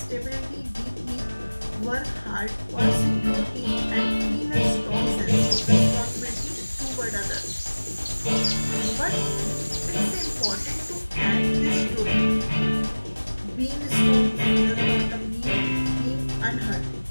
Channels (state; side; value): inverted; both; correlation -1.00